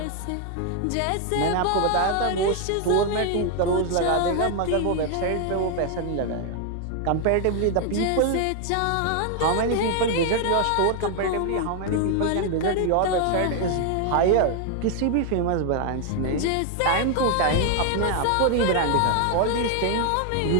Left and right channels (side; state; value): both; different; correlation 0.00